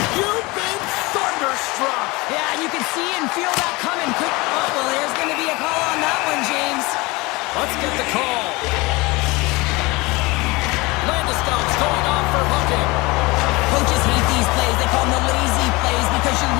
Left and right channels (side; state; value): right; quieter; 23.6 dB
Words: You've been thunderstruck. Yeah, you can see and feel that coming. Oh, well, there's going to be a call on that one, James. Let's get the call. Landeskog's going off for hooking. Coaches hate these plays. They call them the lazy plays because you're